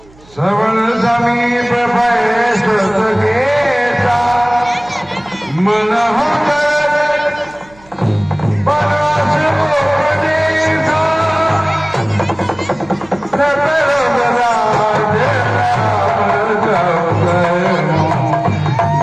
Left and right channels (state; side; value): noise; right; hum, 27 dB below the sound